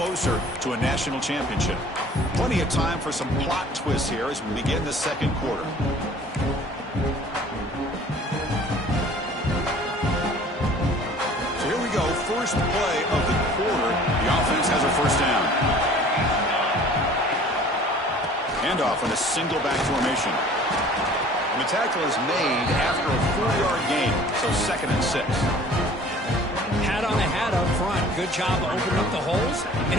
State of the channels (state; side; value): normal; both; correlation 0.49